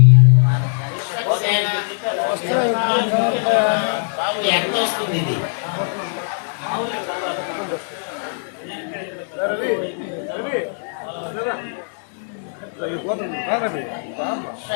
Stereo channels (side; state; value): right; silent; digital silence